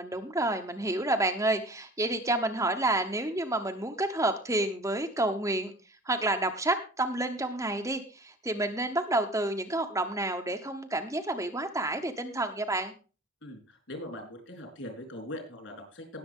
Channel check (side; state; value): both; normal; correlation 0.43